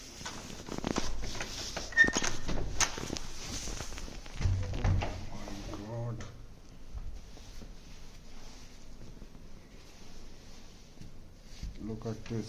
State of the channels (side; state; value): both; identical; correlation 1.00